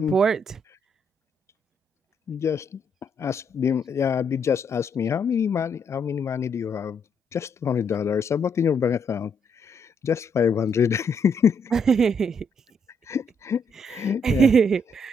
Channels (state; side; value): normal; both; correlation 0.74